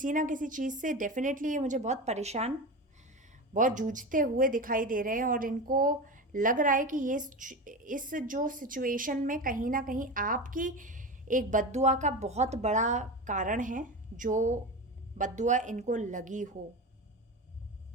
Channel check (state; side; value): normal; both; correlation 0.24